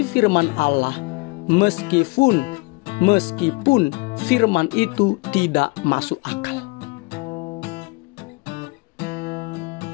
firman Allah meskipun firman itu tidak masuk akal.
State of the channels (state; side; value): quieter; right; 27.0 dB